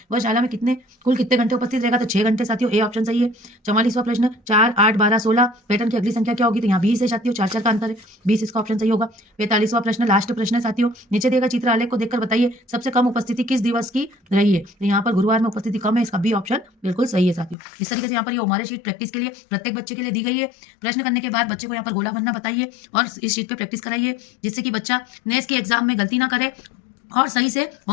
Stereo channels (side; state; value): right; drops out; at 17.6 s